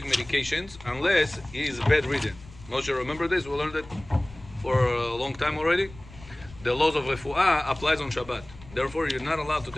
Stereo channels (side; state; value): left; noise; rumble, 19 dB below the sound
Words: medications unless he is bedridden. Moshe, remember this? We learned it for a long time already. The laws of refuah applies on Shabbat. Therefore, you're not allowed to